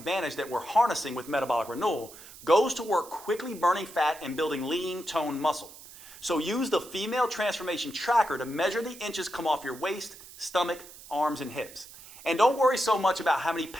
that we're harnessing with metabolic renewal, goes to work quickly burning fat and building lean, toned muscle. So use the female transformation tracker to measure the inches come off your waist, stomach, arms, and hips. And don't worry so much about how many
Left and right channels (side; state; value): right; noise; hiss, 18 dB below the sound